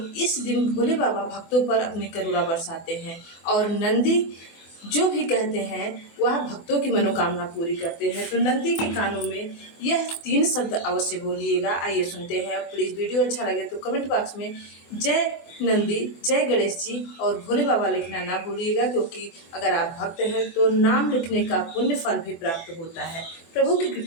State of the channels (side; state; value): right; late; 24 ms